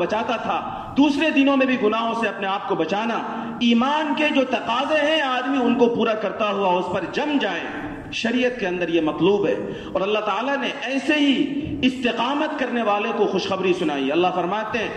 تھا دوسرے دنوں میں بھی گناہوں سے اپنے آپ کو بچانا، ایمان کے جو تقاضے ہیں آدمی ان کو پورا کرتا ہوا اس پر جم جائے، شریعت کے اندر یہ مطلوب ہے۔ اور اللہ تعالیٰ نے ایسے ہی استقامت کرنے والے کو خوشخبری سنائی۔ اللہ فرماتے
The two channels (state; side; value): identical; both; correlation 1.00